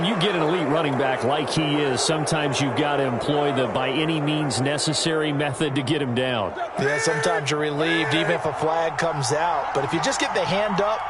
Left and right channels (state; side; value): identical; both; correlation 1.00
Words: you get an elite running back like he is, sometimes you've got to employ the by any means necessary method to get him down. Yeah, sometimes you're relieved even if a flag comes out. But if you just get the hand up